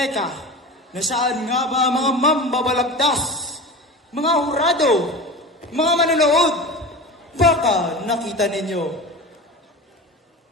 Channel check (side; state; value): both; normal; correlation 0.30